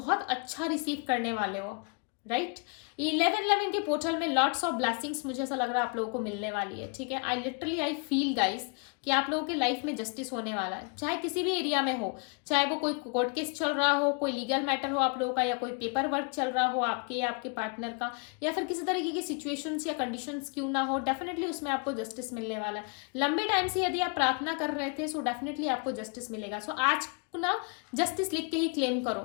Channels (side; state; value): right; quieter; 35.3 dB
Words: अच्छा रिसीव करने वाले हो, राइट। 11/11 के पोर्टल में लॉट्स ऑफ ब्लेसिंग्स मुझे ऐसा लग रहा है आप लोगों को मिलने वाली है, ठीक है। आई फील गाइस कि आप लोगों के लाइफ में जस्टिस होने वाला है, चाहे किसी भी एरिया में हो, चाहे वो कोई कोर्ट केस चल रहा हो, कोई लीगल मैटर हो आप लोगों का, या कोई पेपर वर्क चल रहा हो आपके या आपके पार्टनर का, या फिर किसी तरीके की सिचुएशंस या कंडीशंस क्यों ना हो, डेफिनेटली उसमें आपको जस्टिस मिलने वाला है। लंबे टाइम से यदि आप प्रार्थना कर रहे थे सो डेफिनेटली आपको जस्टिस मिलेगा। सो आज ना जस्टिस लिख के ही क्लेम